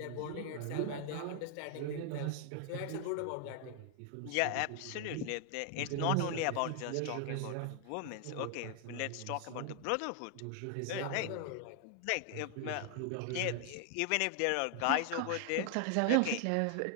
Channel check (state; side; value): different; both; correlation 0.00